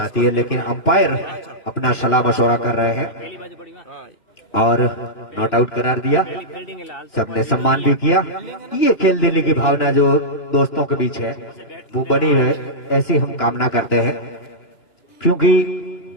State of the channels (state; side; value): late; right; 2.9 ms